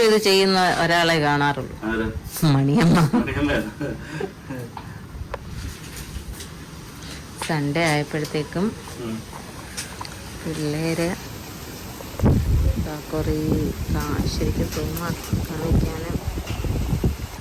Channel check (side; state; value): both; identical; correlation 1.00